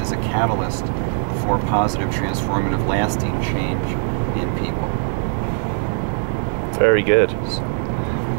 a catalyst for positive, transformative, lasting change in people. Very good. So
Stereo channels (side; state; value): left; silent; digital silence